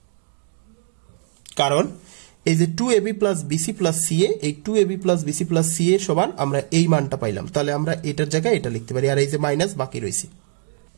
কারণ এই যে 2ab plus bc plus ca, এই 2ab plus bc plus ca সমান আমরা এই মানটা পাইলাম, তাহলে আমরা এটার জায়গায় এটা লিখতে পারি, আর এই যে মাইনাস বাকি রয়েছে।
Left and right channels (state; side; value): silent; left; digital silence